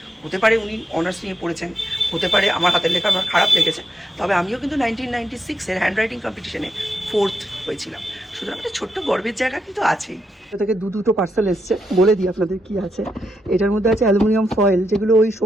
হতে পারে উনি অনার্স নিয়ে পড়েছেন, হতে পারে আমার হাতের লেখা আমার খারাপ লেগেছে, তবে আমিও কিন্তু 1996-এর হ্যান্ডরাইটিং কম্পিটিশনে 4th হয়েছিলাম। সুতরাং একটা ছোট্ট গর্বের জায়গা কিন্তু আছেই। এটা থেকে দুটো পার্সেল এসছে, বলে দিই আপনাদের কি আছে। এটার মধ্যে আছে অ্যালুমিনিয়াম ফয়েল, যেগুলো ওই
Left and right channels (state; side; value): normal; both; correlation 0.84